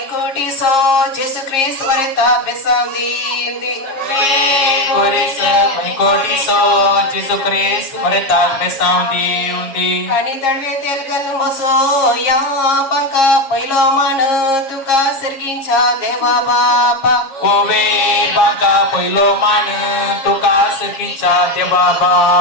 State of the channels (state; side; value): late; right; 7.4 ms